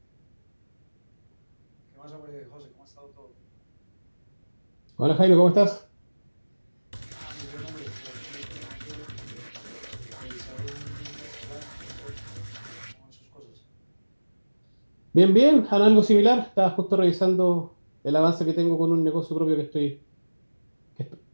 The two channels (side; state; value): both; inverted; correlation -1.00